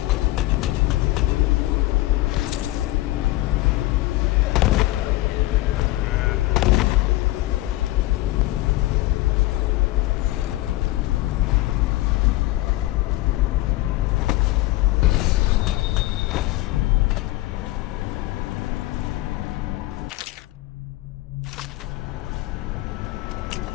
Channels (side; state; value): right; quieter; 17.7 dB